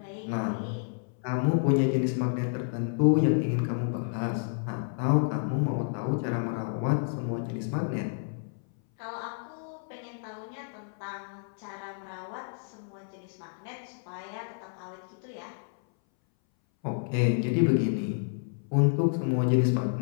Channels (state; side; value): silent; right; 58 dB below the other